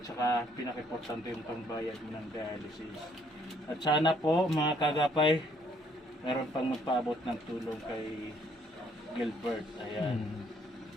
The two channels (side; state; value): both; normal; correlation 0.66